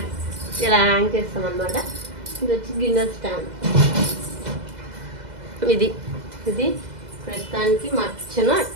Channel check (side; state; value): left; late; 2.0 ms